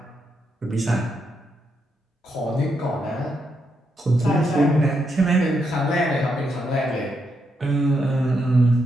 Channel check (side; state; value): both; normal; correlation 0.80